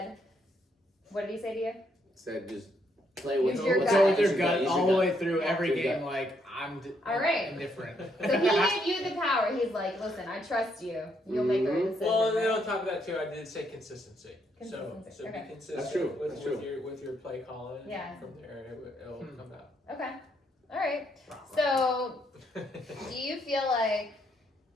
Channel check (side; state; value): both; normal; correlation 0.74